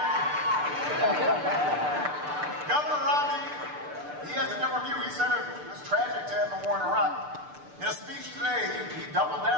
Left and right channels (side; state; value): left; late; 6.8 ms